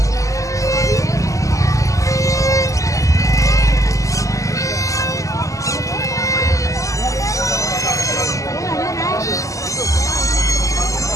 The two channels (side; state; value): right; late; 0.16 ms